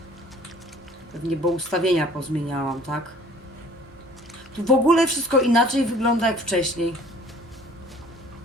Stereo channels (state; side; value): normal; both; correlation 0.52